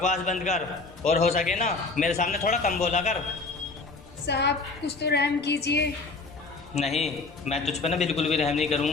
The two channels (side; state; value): right; quieter; 3.8 dB